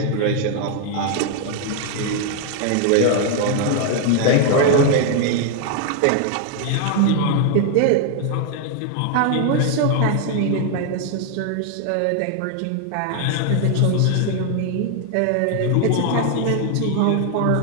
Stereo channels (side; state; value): both; different; correlation 0.00